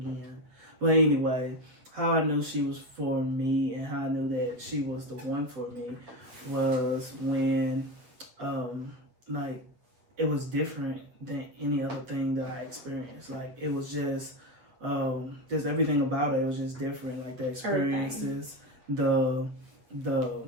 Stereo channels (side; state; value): left; late; 7.9 ms